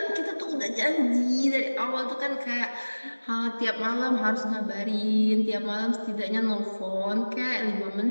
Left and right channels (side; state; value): both; inverted; correlation -1.00